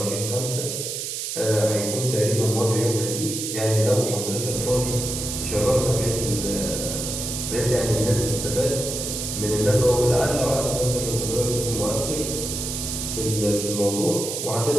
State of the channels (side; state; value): right; noise; hiss, 4 dB below the sound